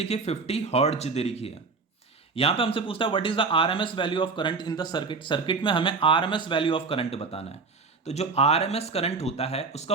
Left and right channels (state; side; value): quieter; left; 4.4 dB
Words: है, 50 हर्ट्ज दे रखी है। यहां पे हमसे पूछता है what is the RMS value of current in the circuit. Circuit में हमें आरएमएस वैल्यू ऑफ करंट बताना है। तो जो आरएमएस करंट होता है उसका